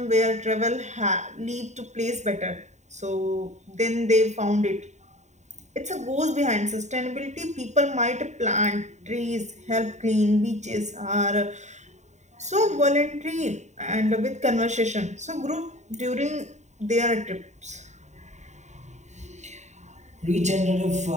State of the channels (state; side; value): late; left; 0.34 ms